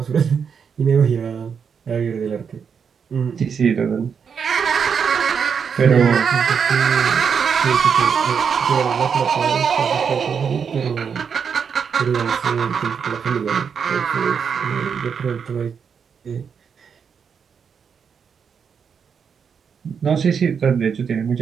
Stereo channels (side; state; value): left; quieter; 6.7 dB